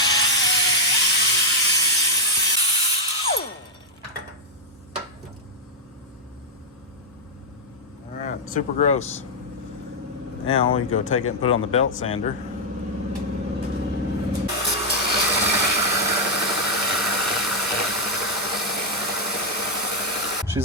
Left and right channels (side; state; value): both; normal; correlation -0.01